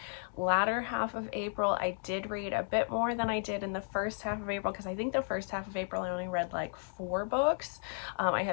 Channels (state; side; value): silent; right; digital silence